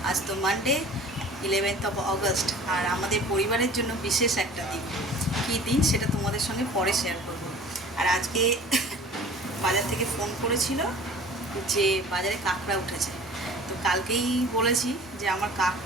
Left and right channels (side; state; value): both; normal; correlation 0.45